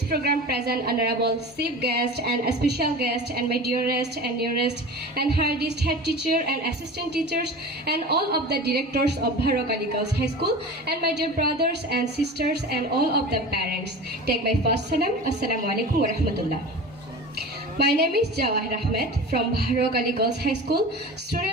program present Honorable Chief Guest and a special guest and my dearest and nearest and hardest head teacher and assistant teachers and all of the directors of Bharok Ali Girls High School and my dear brothers and sisters and all of the parents. Take my first salam. Assalamu alaikum wa rahmatullah. My name is Jawahir Ahmed from Bharok Ali Girls High School,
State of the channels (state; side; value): normal; both; correlation 0.34